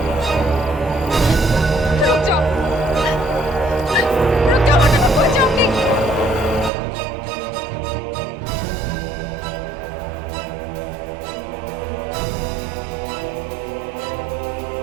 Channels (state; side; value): drops out; left; at 6.7 s